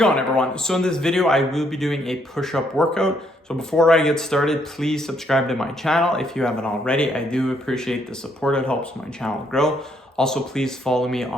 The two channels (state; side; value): normal; both; correlation 0.71